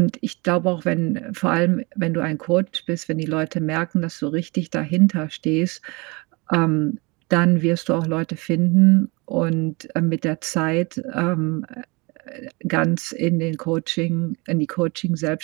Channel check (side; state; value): left; quieter; 27.1 dB